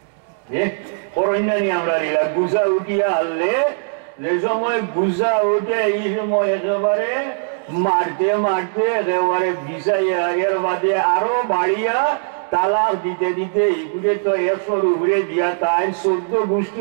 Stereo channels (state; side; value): silent; left; digital silence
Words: করন্যানি আমরা নিলা গুজা উঠিয়া আনলে, যে সময় গুজা উঠে এই সময় একেবারে মারতে মারতে একেবারে বিষাইয়া, এর বাদে আরো বাড়িয়া তালাক দিতে দিতে এগুলো তো 100 উপরে দিয়া তাই 14